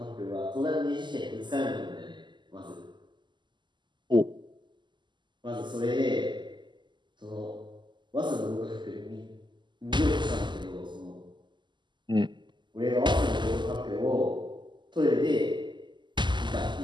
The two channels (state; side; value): late; left; 0.22 ms